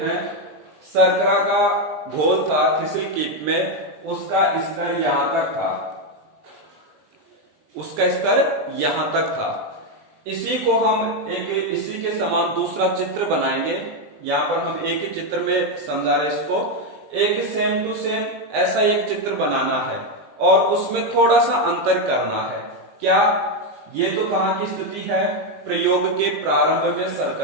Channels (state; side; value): late; left; 20 ms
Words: शर्करा का घोल था थिसिल कीप में, उसका स्तर यहां तक था, उसका स्तर यहां तक था। इसी को हम इसी के समान दूसरा चित्र बनाएंगे। यहां पर हम एक ही चित्र में समझा रहे इसको। एक सेम टू सेम ऐसा एक चित्र बनाना है और उसमें थोड़ा सा अंतर करना है। क्या? ये तो कहां की स्थिति है? प्रयोग के प्रारंभ में